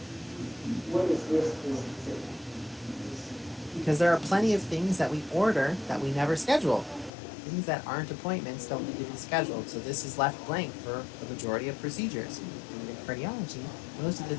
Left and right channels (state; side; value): drops out; right; at 7.1 s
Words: Because there are plenty of things that we order that we never schedule. Things that aren't appointments don't need to be scheduled, so this is left blank for the majority of procedures. And in cardiology, most of the